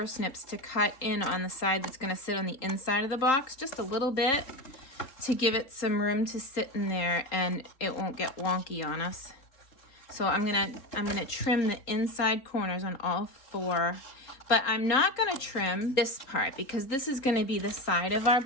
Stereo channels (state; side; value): late; right; 3.8 ms